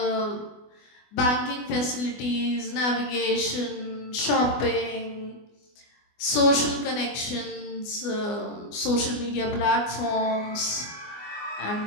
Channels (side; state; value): right; late; 24 ms